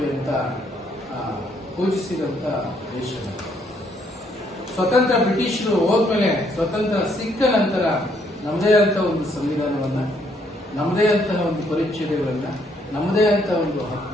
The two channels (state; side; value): normal; both; correlation 0.70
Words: ಅಂತ ಪೂಜಿಸಿದಂತ ದೇಶ. ಸ್ವತಂತ್ರ ಬ್ರಿಟಿಷರು ಹೋದ್ಮೇಲೆ, ಸ್ವತಂತ್ರ ಸಿಕ್ಕ ನಂತರ ನಮ್ಮದೇ ಅಂತ ಒಂದು ಸಂವಿಧಾನವನ್ನ, ನಮ್ಮದೇ ಅಂತಹ ಒಂದು ಪರಿಚ್ಛೇದಗಳನ್ನ, ನಮ್ಮದೇ ಅಂತ ಒಂದು